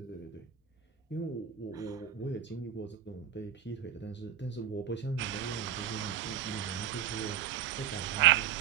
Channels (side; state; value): left; quieter; 9.4 dB